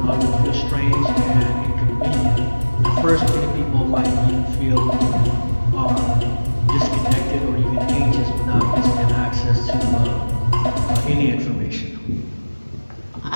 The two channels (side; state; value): both; inverted; correlation -1.00